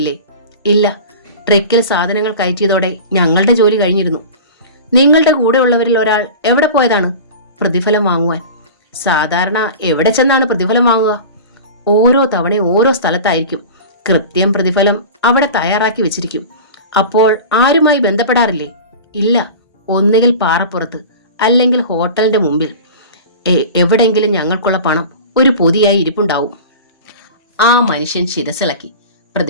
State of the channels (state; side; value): inverted; both; correlation -0.34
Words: ഇല്ല. ട്രക്കിൽ സാധനങ്ങൾ കയറ്റിയതോടെ ഞങ്ങളുടെ ജോലി കഴിഞ്ഞിരുന്നു. നിങ്ങളുടെ കൂടെയുള്ളവരിൽ ഒരാൾ എവിടെ പോയതാണ്? പ്രതിഫലം വാങ്ങുവാൻ. സാധാരണ എവിടെ ചെന്നാണ് പ്രതിഫലം വാങ്ങുക? ഓരോ തവണയും ഓരോ സ്ഥലത്തായിരിക്കും. കൃത്യം പ്രതിഫലം അവിടെ തയ്യാറാക്കി വെച്ചിരിക്കും. അപ്പോൾ ആരുമായി ബന്ധപ്പെടാറില്ലേ? ഇല്ല. ഒന്നുകിൽ പാറപ്പുറത്ത്, അല്ലെങ്കിൽ ഹോട്ടലിന്റെ മുമ്പിൽ. എവിടെങ്കിലും ഞങ്ങൾക്കുള്ള പണം ഒരു പൊതിയായി ഇരിപ്പുണ്ടാവും. ആ മനുഷ്യൻ ശിരസിളക്കി.